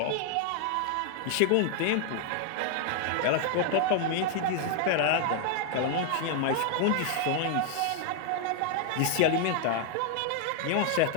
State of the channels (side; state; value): both; different; correlation 0.00